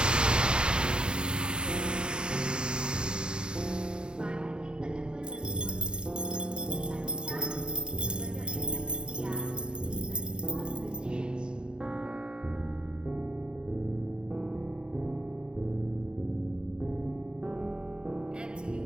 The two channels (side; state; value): left; late; 0.049 ms